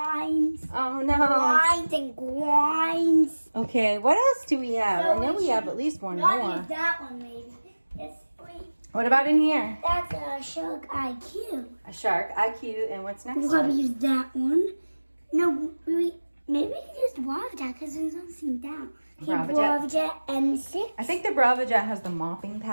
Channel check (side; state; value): both; inverted; correlation -1.00